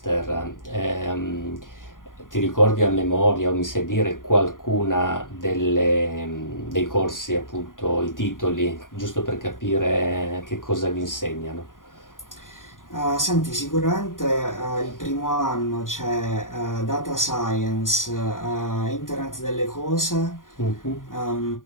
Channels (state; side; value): late; right; 0.89 ms